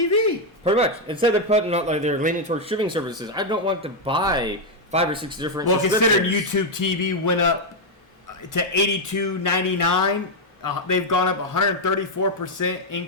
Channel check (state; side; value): normal; both; correlation 0.01